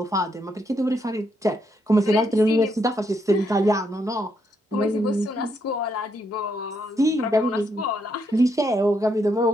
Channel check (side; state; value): both; normal; correlation 0.77